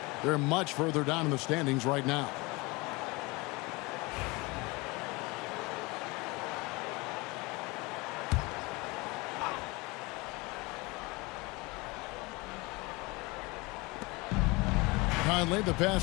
They're much further down in the standings right now. Conley, the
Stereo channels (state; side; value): quieter; right; 24.9 dB